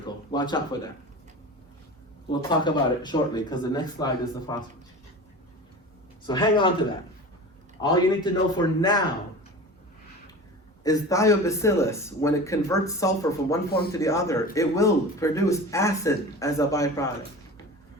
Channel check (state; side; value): normal; both; correlation 0.34